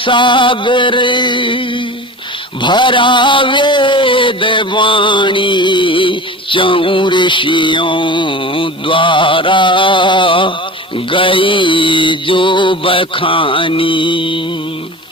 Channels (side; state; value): both; normal; correlation 0.34